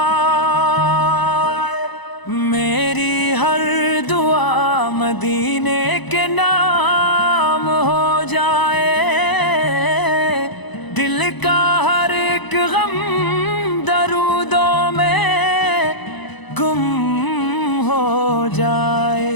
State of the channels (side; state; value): right; late; 1.0 ms